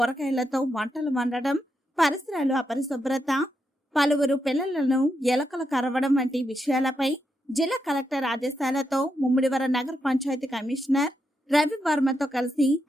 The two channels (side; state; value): both; normal; correlation 0.83